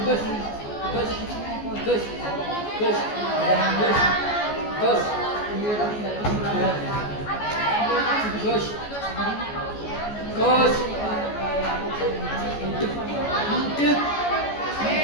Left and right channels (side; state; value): right; late; 14 ms